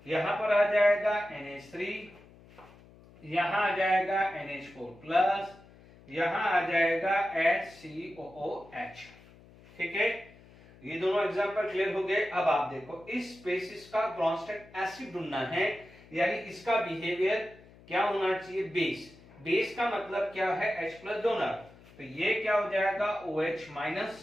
यहां पर आ जाएगा NH3, यहां आ जाएगा NH4 प्लस, यहां आ जाएगा HCOOH। ठीक है, ये दोनों एग्जांपल क्लियर हो गए। अब आप देखो इस स्पेसिस का ब्रॉन्स्टेड एसिड ढूंढना है, यानी इसका बिहेवियर क्या होना चाहिए, बेस। बेस का मतलब क्या है, H प्लस डोनर, तो ये क्या हो जाएगा OH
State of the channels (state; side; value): noise; left; hum, 23 dB below the sound